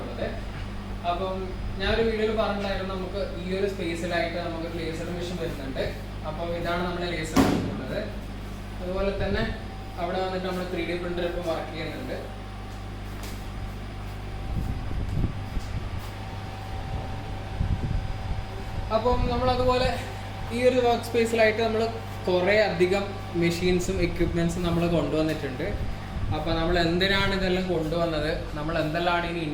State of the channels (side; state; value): both; identical; correlation 1.00